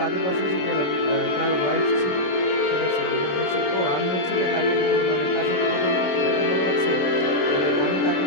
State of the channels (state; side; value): late; right; 27 ms